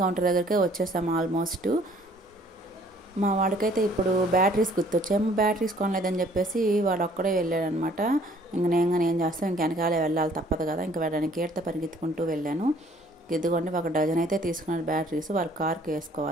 కౌంటర్ దగ్గరికే వచ్చేసాము ఆల్మోస్ట్. మా వాడికైతే ఇప్పుడు బ్యాటరీస్ గుర్తొచ్చాము, బ్యాటరీస్ కొనలేదని చెప్పేసి వాడు ఒక్కడే వెళ్ళాడనమాట. నేను చేస్తాను, ఇంక వెనకాలే వెళ్ళాలి తప్పదు కదా, ఇంకా వెళ్ళడానికి ఏడితే పరిగెత్తుకుంటూ వెళ్ళాను. ఇదిగోండి ఒక డజన్ అయితే తీసుకున్నాడు బ్యాటరీస్, వాళ్ళ కార్కి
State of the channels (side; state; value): both; normal; correlation 0.58